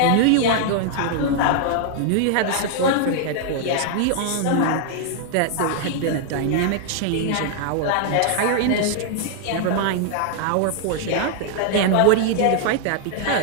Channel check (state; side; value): different; both; correlation 0.00